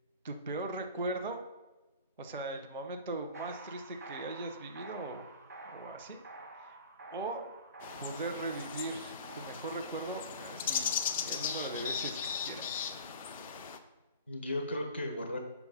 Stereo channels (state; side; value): inverted; both; correlation -0.42